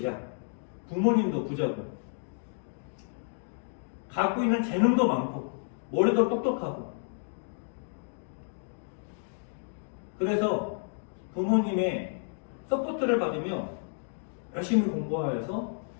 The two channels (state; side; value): silent; right; digital silence